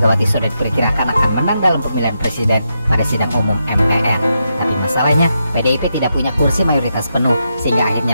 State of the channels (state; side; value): inverted; both; correlation -0.84